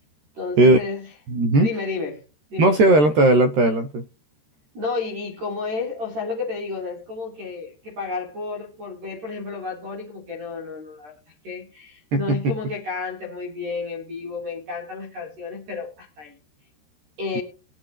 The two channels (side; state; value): left; late; 13 ms